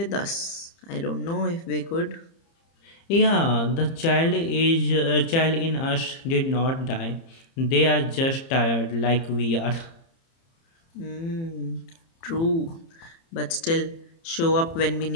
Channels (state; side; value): late; right; 30 ms